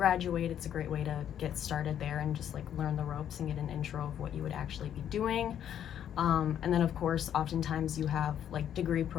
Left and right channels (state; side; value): quieter; right; 9.9 dB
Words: It's a great way to get started there and just like learn the ropes and get an intro of what you would actually be doing. And then of course, oftentimes you have like degree